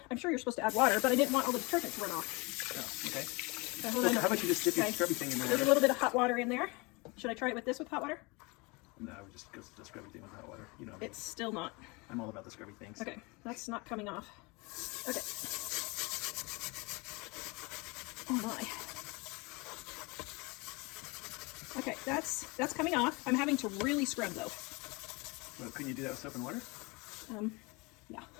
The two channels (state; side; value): quieter; right; 27.0 dB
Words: I'm sure you're supposed to add water, but I didn't want all the detergent to run off. Oh, okay. So hold on. How about you just dip your scrubby thing in there? There's a little bit of hot water in there. Should I try it with this with hot water? No, I would just go to the scrubby thing with hot water. You know, It's still not. I'm all about the scrubby things. Okay, that's not coming off. Okay. Oh my. Okay, that's coming off. I'm having to really scrub though. Well, couldn't you do that with soap and water? Yeah.